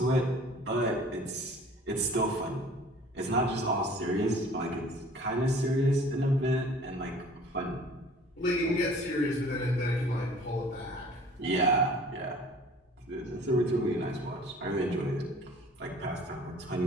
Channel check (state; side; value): normal; both; correlation 0.49